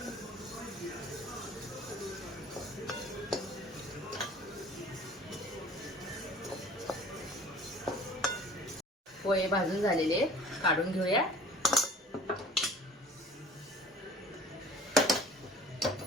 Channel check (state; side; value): normal; both; correlation 0.47